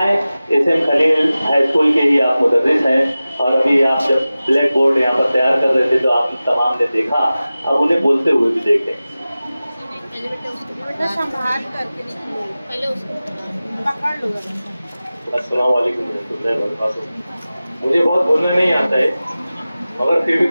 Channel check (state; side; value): inverted; both; correlation -0.96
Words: एसएम खलील हाई स्कूल के ही आप मुदर्रिस हैं और अभी आप जब ब्लैक बोर्ड यहाँ पर तैयार कर रहे थे तो आप तमाम ने देखा, अब उन्हें बोलते हुए भी देखें। अस्सलाम वालेकुम। मुझे बहुत बोलना नहीं आता है मगर फिर भी